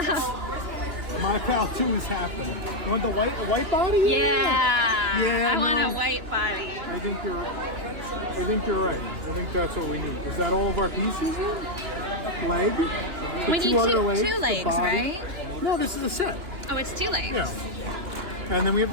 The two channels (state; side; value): late; left; 2.9 ms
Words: My Pal 2 is happening. You want the white body? Yeah. Yeah, I want no. a white body. I think you're right. I think that's what we need. Is that all of our pieces then? Leg? The We need other two legs, the legs, body? right? No, this is a set. Oh, it's 2 legs. Yeah. And then we have